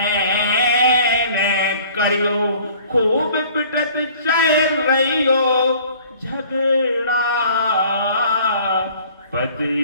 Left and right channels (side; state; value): both; inverted; correlation -0.51